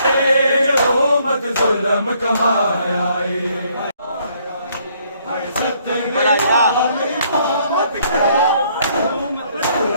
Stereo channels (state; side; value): inverted; both; correlation -0.67